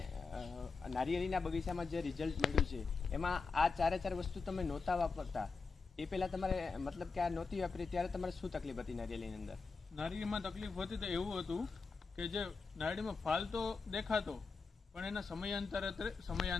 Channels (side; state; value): right; quieter; 4.6 dB